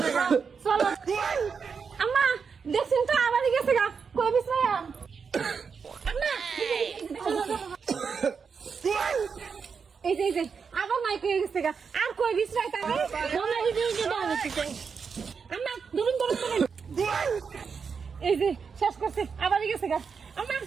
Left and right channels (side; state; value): left; quieter; 5.8 dB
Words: চলো আম্মা দেখছেন তো আবারই গেছে গা কই বিশ্রাম আম্মা এই যে আবার নাই কই গেছে গা আর কই বিশ্রাই তারে মনে এই যে দাও হচ্ছে আম্মা ধরুন এই যে শেষ করছে আবারই গেছে গা আম্মা